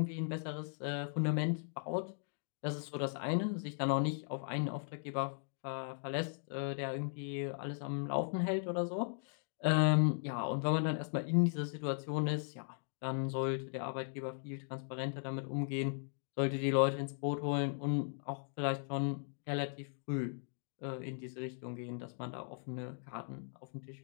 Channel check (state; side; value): silent; right; digital silence